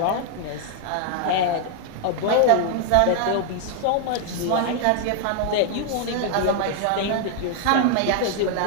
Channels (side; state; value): both; different; correlation 0.00